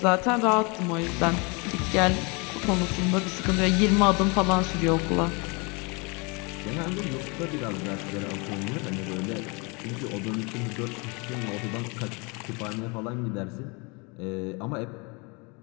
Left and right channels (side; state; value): right; quieter; 30.1 dB